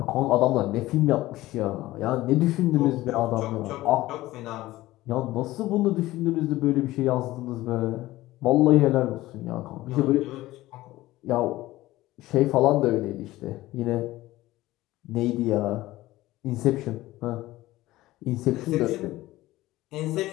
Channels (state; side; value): quieter; right; 17.1 dB